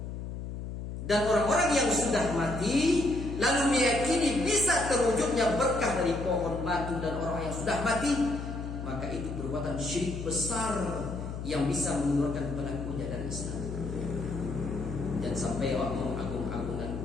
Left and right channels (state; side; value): noise; left; hum, 7 dB below the sound